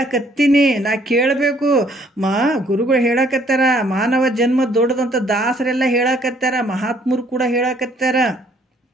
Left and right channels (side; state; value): both; normal; correlation 0.63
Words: ನಾ ಕೇಳಬೇಕು. ಗುರುಗಳು ಹೇಳಕತ್ತಾರ, ಮಾನವ ಜನ್ಮ ದೊಡ್ಡದಂತ ದಾಸರೆಲ್ಲ ಹೇಳಕತ್ತಾರ, ಮಹಾತ್ಮರು ಕೂಡ ಹೇಳಕತ್ತಾರ.